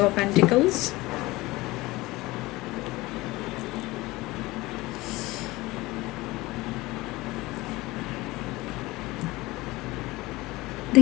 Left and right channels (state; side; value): quieter; right; 20.4 dB